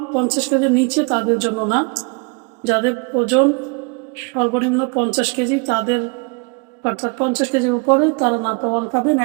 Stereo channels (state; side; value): quieter; left; 32.5 dB